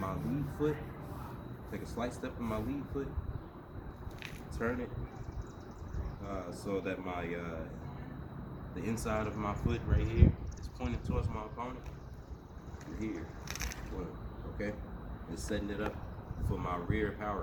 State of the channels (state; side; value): identical; both; correlation 1.00